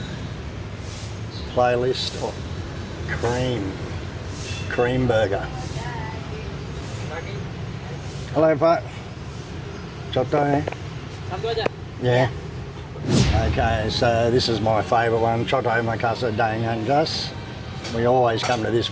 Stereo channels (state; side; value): identical; both; correlation 1.00